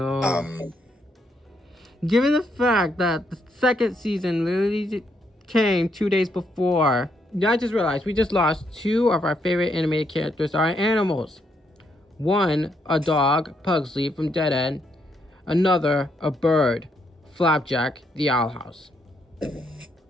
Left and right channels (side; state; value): both; normal; correlation 0.76